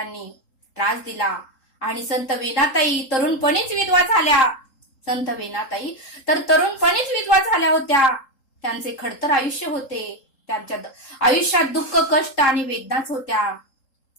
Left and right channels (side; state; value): right; late; 3.8 ms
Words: त्रास दिला आणि संत वीणाताई तरुणपणीच विधवा झाल्या होत्या. त्यांचे खडतर आयुष्य होते, त्यांच्या आयुष्यात दुःख, कष्ट आणि वेदनाच होत्या,